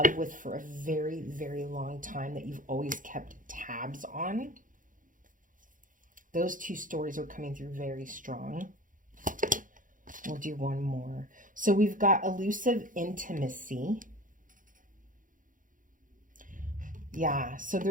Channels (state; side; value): late; left; 0.39 ms